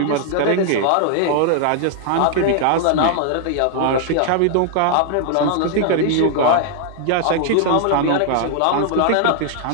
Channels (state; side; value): different; both; correlation 0.00